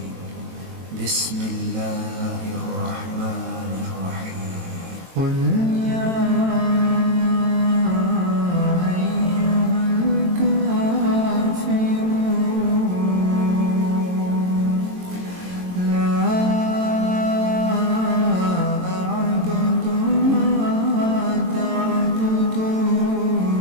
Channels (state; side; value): late; left; 22 ms